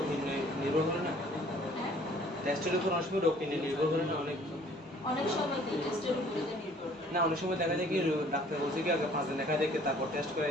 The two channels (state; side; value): normal; both; correlation 0.55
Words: নির্ভর করে না, হ্যাঁ, টেস্টের উপর অনেক সময় রোগ নির্ভর করে না অনেক অনেক সময় কি টেস্টের উপরে যে নির্ভর করে। না অনেক সময় দেখা যায় কি ডাক্তার বলছে কি আগে 5 দিন দেখা দেখে তারপর টেস্ট করে